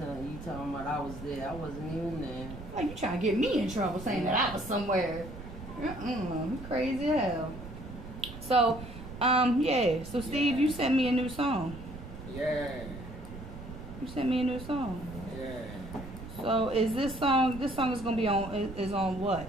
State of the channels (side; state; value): right; noise; rumble, 12 dB below the sound